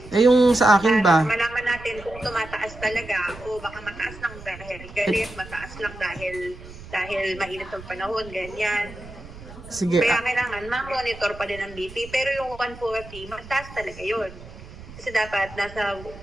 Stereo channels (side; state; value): right; noise; rumble, 16 dB below the sound